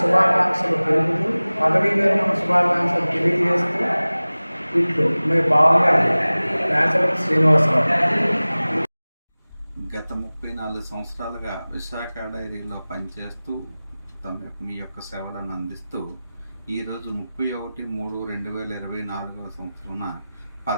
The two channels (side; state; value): both; inverted; correlation -0.98